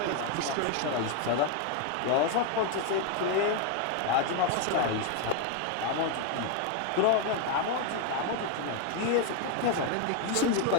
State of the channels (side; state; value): both; different; correlation 0.01